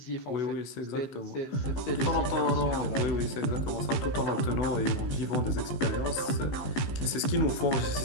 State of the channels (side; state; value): right; late; 16 ms